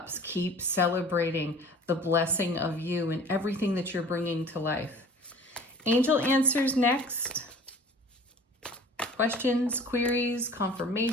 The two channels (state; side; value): normal; both; correlation 0.45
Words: keep celebrating the blessing of you and everything that you're bringing to life. Angel answers next. Questions, queries,